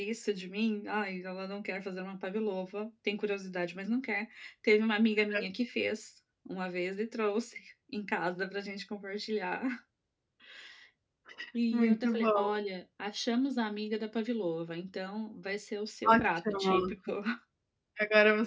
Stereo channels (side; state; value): both; identical; correlation 1.00